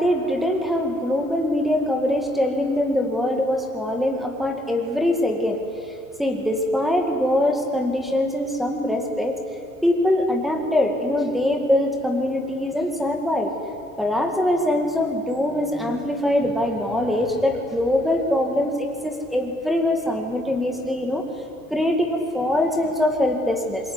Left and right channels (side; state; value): both; normal; correlation 0.71